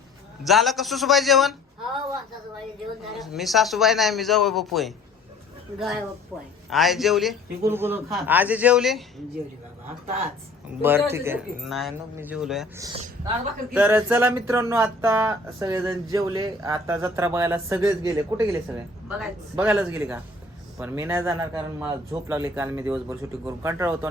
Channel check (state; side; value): quieter; right; 3.1 dB